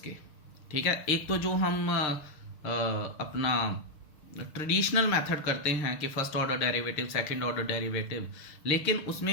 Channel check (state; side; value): late; right; 6.6 ms